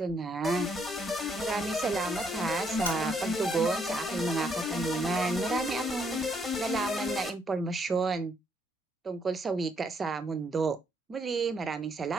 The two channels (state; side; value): normal; both; correlation 0.72